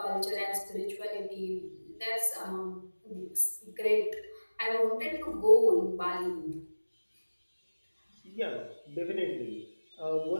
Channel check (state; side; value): inverted; both; correlation -1.00